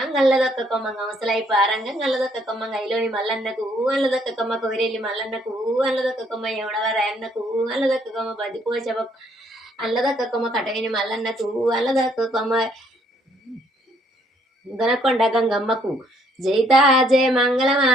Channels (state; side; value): normal; both; correlation 0.67